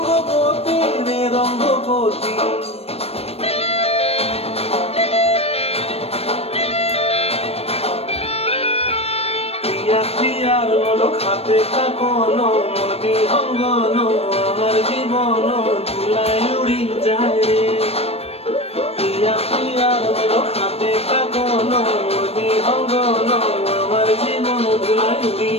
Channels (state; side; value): late; right; 0.29 ms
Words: রে রঙ্গবতী। প্রিয়ার লোক হাতে কাকন, মন বিহঙ্গন আমার জীবন ধুলায় উড়ি যায় রে। প্রিয়ার লোক হাতে কাকন, মন বিহঙ্গন আমার জীবন ধুলায় উড়ি